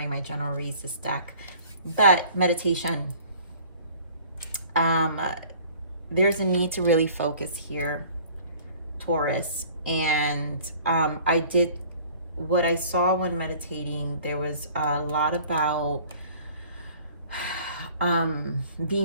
my general reads, this deck. But meditation, there's a need to really focus here, Taurus. And what I saw when meditating, there was a lot about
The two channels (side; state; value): both; inverted; correlation -0.51